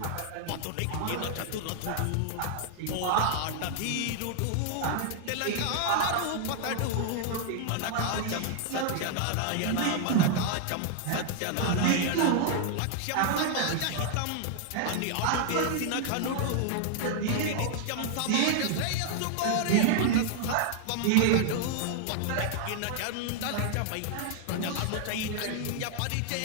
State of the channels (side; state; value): both; different; correlation 0.00